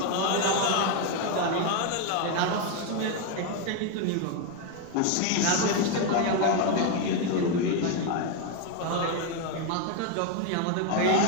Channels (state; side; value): different; both; correlation 0.02